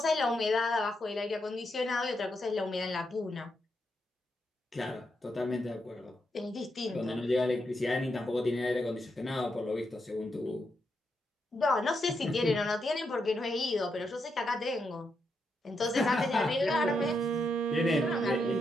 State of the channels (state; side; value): normal; both; correlation 0.82